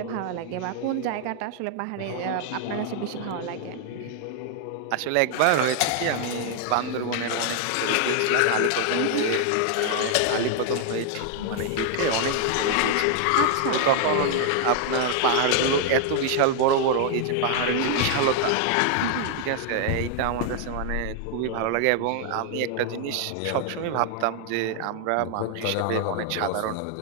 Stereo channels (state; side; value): different; both; correlation 0.00